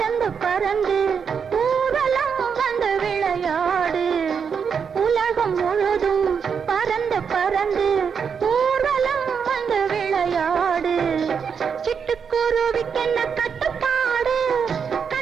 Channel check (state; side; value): quieter; left; 6.6 dB